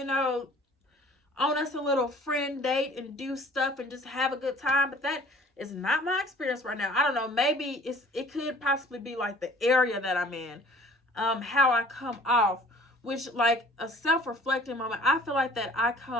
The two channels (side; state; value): both; normal; correlation 0.51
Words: on us a little friend date and do stuff and just have a good time. But that is not my experience right now. I don't know. Maybe it could possibly be the area that I'm in, how I come off. Which, a self-reflecting moment, I feel like that I